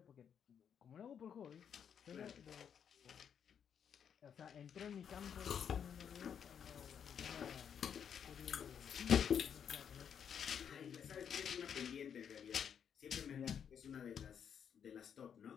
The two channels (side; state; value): right; quieter; 8.0 dB